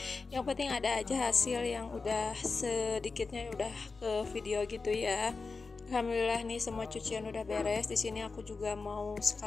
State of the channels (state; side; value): quieter; right; 4.2 dB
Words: Yang penting ada aja hasil yang udah sedikitnya udah ke video gitu ya. Alhamdulillah nih semua cucian udah beres. Di sini aku juga mau